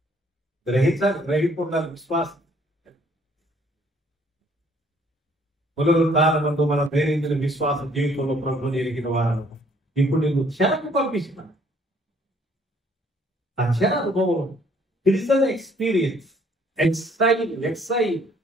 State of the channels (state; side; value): normal; both; correlation 0.62